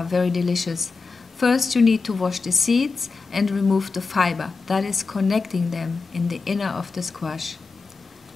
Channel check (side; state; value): right; quieter; 4.3 dB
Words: very delicious. First you need to wash the seeds and remove the fiber that is connecting them in the inner of the squash.